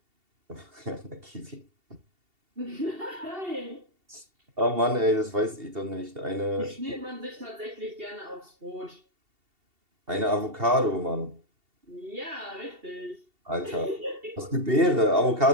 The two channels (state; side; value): late; left; 2.7 ms